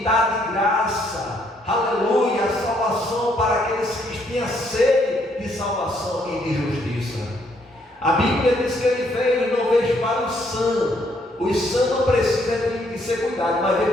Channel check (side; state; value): both; normal; correlation 0.70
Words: dar de graça, aleluia, a salvação para aqueles que tinham sede de salvação e de justiça. A Bíblia diz que ele veio e não veio para os sãos. Os sãos não precisam de ser cuidados, mas veio